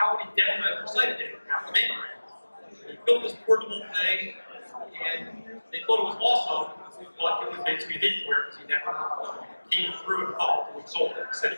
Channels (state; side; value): inverted; both; correlation -1.00